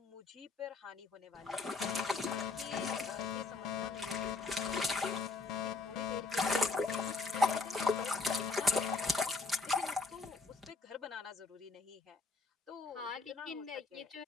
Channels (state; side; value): quieter; right; 3.9 dB